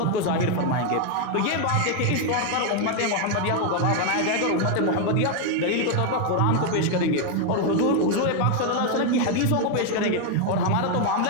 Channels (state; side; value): different; both; correlation 0.01